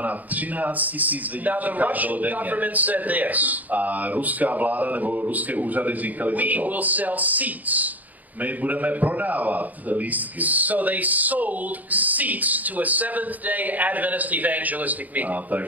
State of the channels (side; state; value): left; late; 0.079 ms